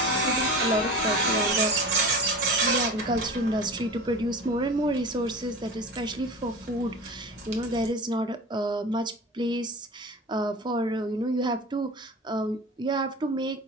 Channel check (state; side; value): normal; both; correlation 0.33